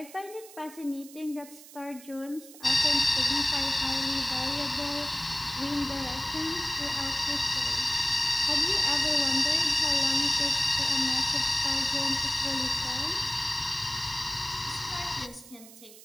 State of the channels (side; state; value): right; noise; hiss, 19 dB below the sound